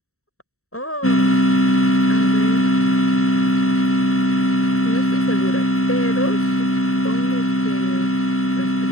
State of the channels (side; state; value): right; late; 0.64 ms